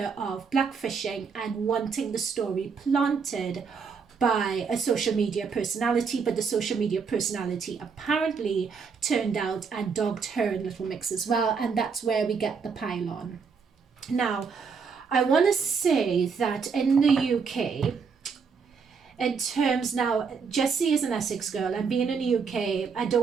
of blackfishing and wanting the story planted by a social media personality, but the social media personality apparently turned out and dogged her in Little Mix as well, and that's where we get the pylon. Now, I want to say that in the UK, in terms now, Jesy is an Essex girl, and being in the UK, I don't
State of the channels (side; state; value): left; quieter; 5.6 dB